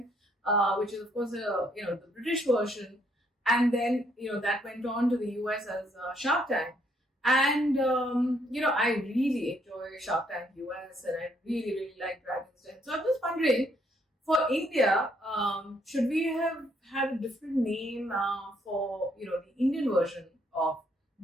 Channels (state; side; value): normal; both; correlation 0.70